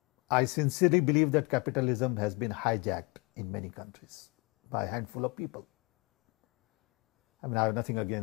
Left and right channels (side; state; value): right; quieter; 27.5 dB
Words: I sincerely believe that capitalism has been hijacked in many countries by a handful of people. I mean, I have nothing